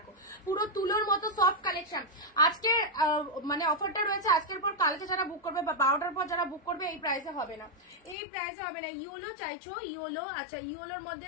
পুরো তুলোর মতো সফট কালেকশন। আজকে মানে অফারটা রয়েছে, আজকের পর কালকে যারা বুক করবে বা 12টার পর যারা বুক করবে এই প্রাইসে হবে না, এই প্রাইসে হবে না। ইয়েলো চাইছো, ইয়েলো, আচ্ছা ইয়েলোর মধ্যে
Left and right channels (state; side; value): drops out; right; at 8.2 s